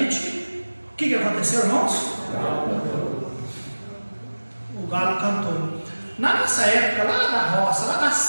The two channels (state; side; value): inverted; both; correlation -1.00